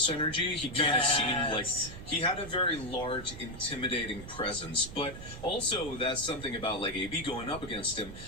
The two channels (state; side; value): noise; right; rumble, 13 dB below the sound